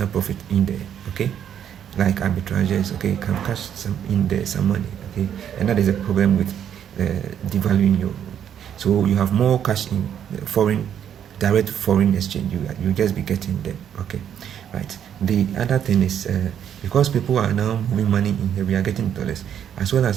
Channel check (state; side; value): quieter; left; 9.3 dB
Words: profit in there, okay, like arbitrages, okay, can cash some in there, some money, okay. And that is a problem with devaluing your. So you have more cash in direct foreign exchange. You just be getting them, okay, right. The other thing is because people are now moving money in here, we are getting dollars, as well